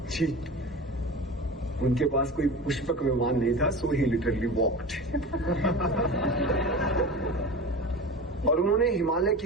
जी, उनके पास कोई पुष्पक विमान नहीं था, सो ही लिटरली वॉक्ड। और उन्होंने हिमालय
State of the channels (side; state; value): both; normal; correlation 0.32